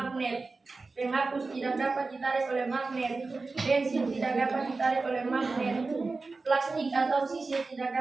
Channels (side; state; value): left; quieter; 3.8 dB